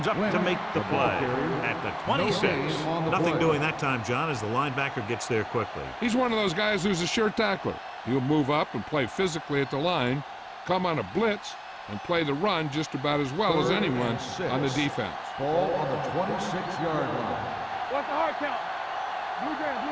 up to make the play at the 26. Nothing doing that time, John, as the linebacker gets there quickly. He's one of those guys who's a sure tackler. He'll move up and play physically at the line, come on a blitz, and play the run just about as well as anyone on the defense. Ball on the 26-yard line. What's the hard count? Blue game.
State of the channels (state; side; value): identical; both; correlation 1.00